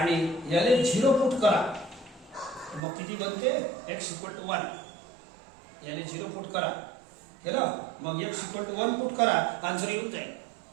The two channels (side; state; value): left; drops out; at 2.8 s